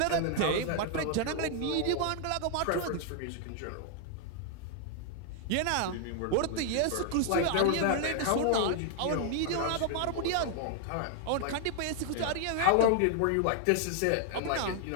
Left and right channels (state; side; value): different; both; correlation 0.00